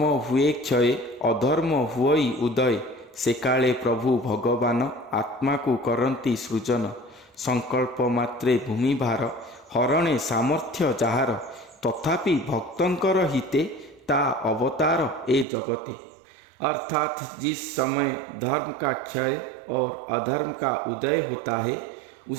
हुए क्षय अधर्म हुई उदय, से काले प्रभु भगवान आत्मा को करंती सृजन। संकल्प मात्रे भूमि भार हरणे सामर्थ्य जाहार, तथापि भक्तंकर हिते ता अवतार ए जगते। अर्थात जिस समय धर्म का क्षय और अधर्म का उदय होता है,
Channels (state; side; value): drops out; left; at 15.5 s